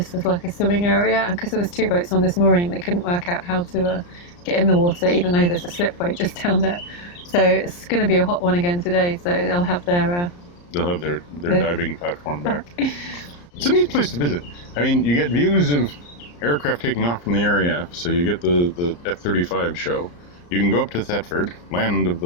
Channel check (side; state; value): right; late; 34 ms